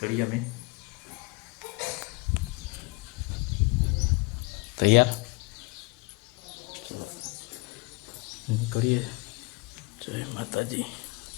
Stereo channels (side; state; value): right; quieter; 25.8 dB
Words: અમે તૈયાર નીકળીએ જય માતાજી